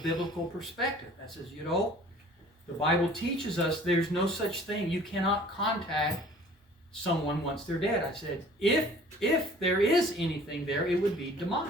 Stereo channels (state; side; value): normal; both; correlation 0.50